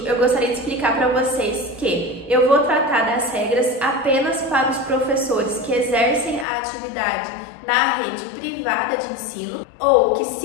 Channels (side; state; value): right; drops out; at 6.5 s